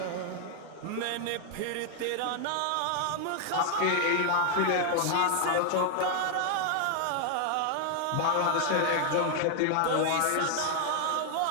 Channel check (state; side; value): different; both; correlation 0.00